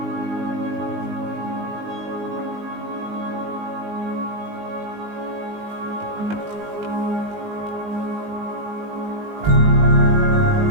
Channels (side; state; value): left; late; 19 ms